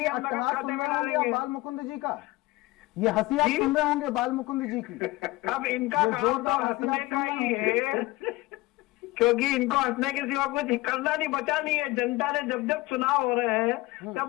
हम नगद खाते में डालेंगे। बाल मुकुंद जी का ये हंसी आप सुन रहे होंगे, बाल मुकुंद जी की। अब इनका काम तो हंसने का ही है, क्योंकि इनको हंसने के सिवा कुछ करना नहीं, बचा नहीं है। जनता ने जब जब चुनाव हो रहे हैं, तब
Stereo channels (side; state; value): right; quieter; 20.0 dB